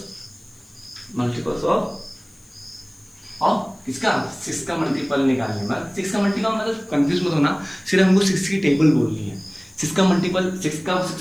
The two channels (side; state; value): left; noise; hiss, 30 dB below the sound